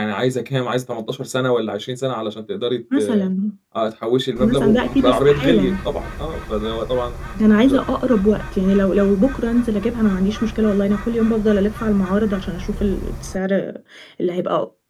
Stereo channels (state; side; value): identical; both; correlation 1.00